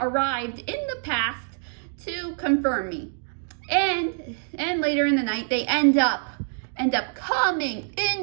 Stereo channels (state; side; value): silent; left; digital silence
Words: in the past to confirm me. And later in the night, they end up